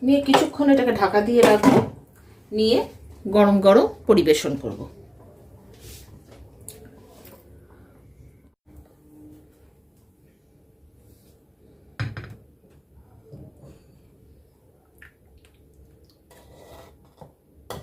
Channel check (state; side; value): identical; both; correlation 1.00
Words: নিয়ে কিছুক্ষণ এটাকে ঢাকা দিয়ে রাখবো, নিয়ে গরম গরম পরিবেশন করব।